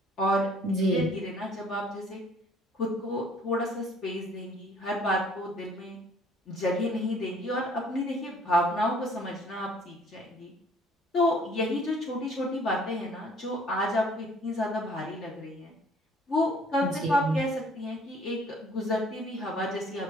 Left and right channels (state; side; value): normal; both; correlation 0.57